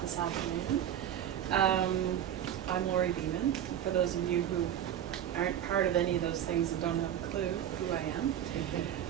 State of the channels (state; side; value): quieter; left; 10.4 dB